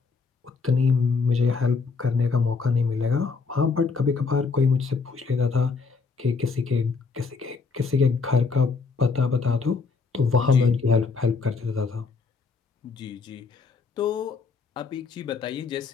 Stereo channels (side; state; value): right; quieter; 4.8 dB